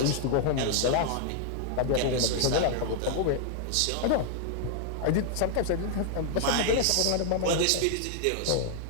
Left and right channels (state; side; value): different; both; correlation 0.00